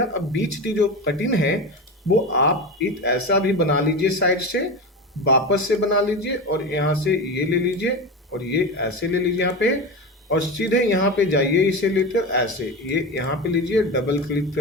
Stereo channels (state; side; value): normal; both; correlation 0.23